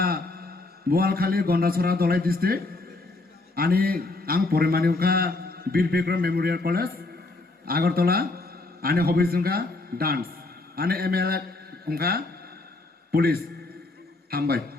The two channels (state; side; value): quieter; right; 3.1 dB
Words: Boalkhali Gandacherra Dalai district আনি আং পরিমানি উখা বীর Vikram Memorial college Agartala আনি hobbies উংখা dance আনি MLA উংখা police হামবাই